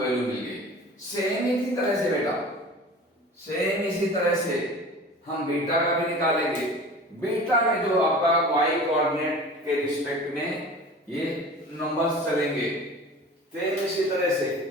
मिल गई। सेम इसी तरह से बेटा, सेम इसी तरह से हम बीटा का भी निकालेंगे। बीटा में जो आपका y कोऑर्डिनेट के रिस्पेक्ट में ये नंबर्स चलेंगे, सेम इसी तरह से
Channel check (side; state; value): both; normal; correlation 0.40